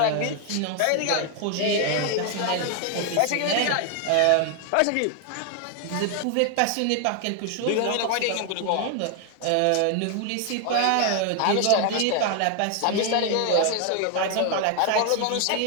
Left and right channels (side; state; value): both; different; correlation 0.01